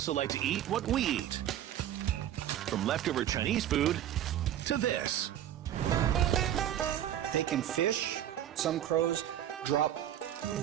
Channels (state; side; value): quieter; left; 11.3 dB